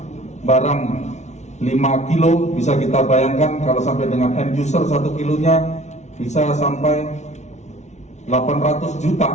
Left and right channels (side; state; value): right; late; 0.33 ms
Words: barang 5 kilo bisa kita bayangkan kalau sampai dengan end user 1 kilonya bisa sampai 800